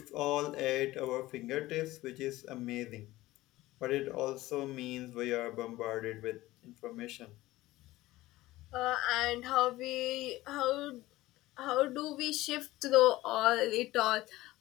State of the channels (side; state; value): right; quieter; 17.6 dB